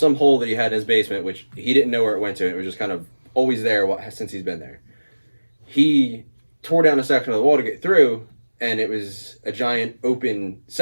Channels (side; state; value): both; inverted; correlation -1.00